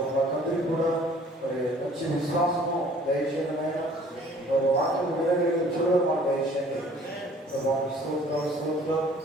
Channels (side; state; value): both; normal; correlation 0.54